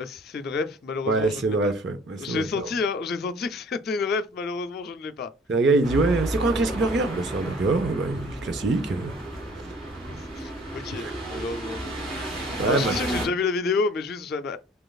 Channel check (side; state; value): both; normal; correlation 0.53